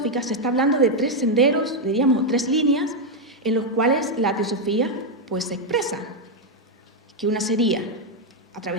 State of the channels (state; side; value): normal; both; correlation 0.02